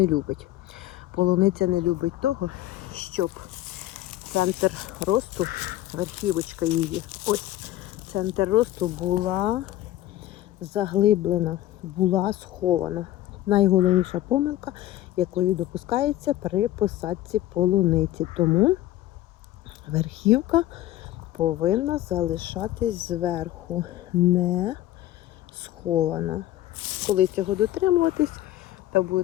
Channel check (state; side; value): quieter; right; 14.5 dB